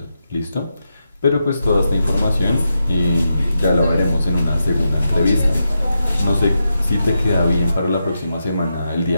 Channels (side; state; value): both; inverted; correlation -0.86